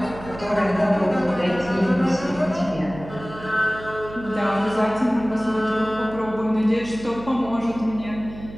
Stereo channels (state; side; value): noise; right; hum, 14 dB below the sound